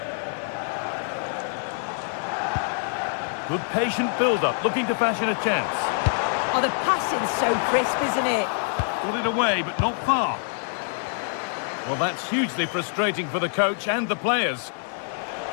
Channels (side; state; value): right; silent; 57 dB below the other